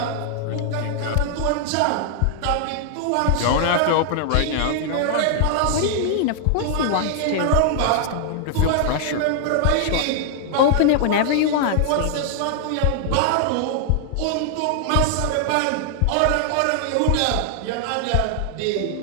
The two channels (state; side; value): different; both; correlation -0.01